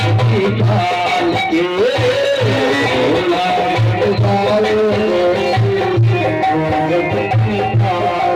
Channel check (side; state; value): both; identical; correlation 1.00